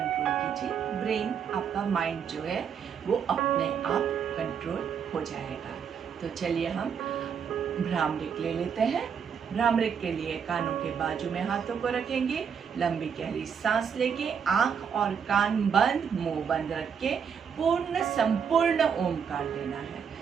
कीजिए, ब्रेन आपका माइंड जो है वो अपने आप कंट्रोल हो जाएगा। तो चलिए हम भ्रामरिक ले लेते हैं। भ्रामरिक के लिए कानों के बाजू में हाथों को रखेंगे, लंबी गहरी सांस लेके आंख और कान बंद, मुंह बंद रख के पूर्ण संपूर्ण ओमकार लेना है।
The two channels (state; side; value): quieter; left; 7.1 dB